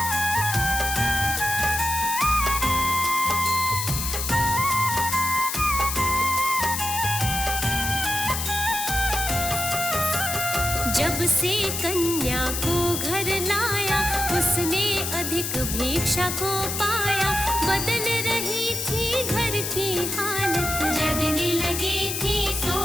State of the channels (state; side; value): noise; left; hiss, 3 dB below the sound